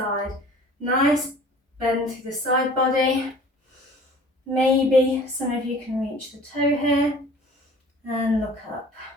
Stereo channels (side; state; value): both; normal; correlation 0.47